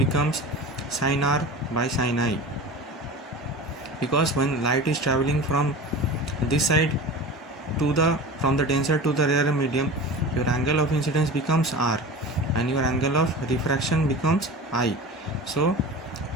sin R by sin I, because when light is traveling from this side from the denser to the rarer medium, your angle of incidence becomes R and your angle of refraction becomes I. So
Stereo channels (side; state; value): both; normal; correlation 0.34